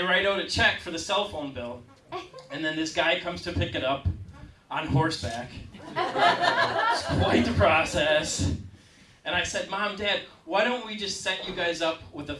write out a check for the cell phone bill. And then this guy comes to pick it up on horseback. It's quite the process. And I said, Mom, Dad, why don't we just set you guys up with a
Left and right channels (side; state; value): both; identical; correlation 1.00